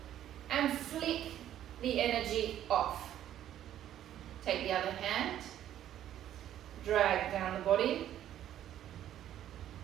And flick the energy off. Take the other hand. Drag down the body.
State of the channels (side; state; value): left; quieter; 11.5 dB